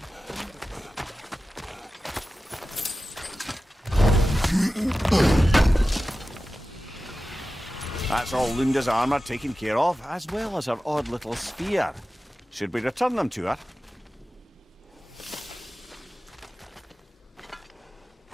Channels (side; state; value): both; normal; correlation 0.94